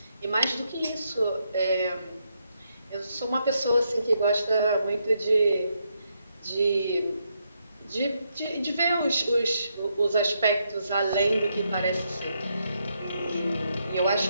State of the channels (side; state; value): both; inverted; correlation -0.79